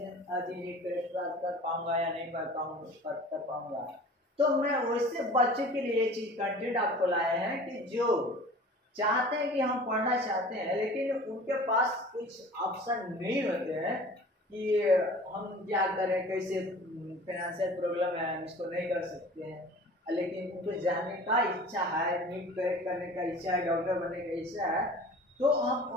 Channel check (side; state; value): both; normal; correlation 0.43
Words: नीट क्रैक कर पाऊंगा या नहीं कर पाऊंगा। तो मैं वैसे बच्चों के लिए ये चीज कंटेंट आपको लाए हैं कि जो चाहते हैं कि हम पढ़ना चाहते हैं लेकिन उनके पास कुछ ऑप्शन नहीं होते हैं कि हम क्या करें, कैसे फाइनेंशियल प्रॉब्लम है, हम इसको नहीं कर सकते हैं, लेकिन उनको जानने का इच्छा है, नीट क्रैक करने का इच्छा है, डॉक्टर बनने का इच्छा है, तो